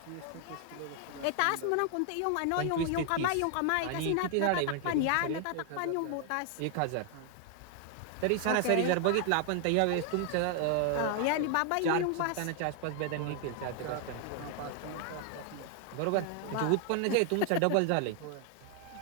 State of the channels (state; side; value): different; both; correlation 0.00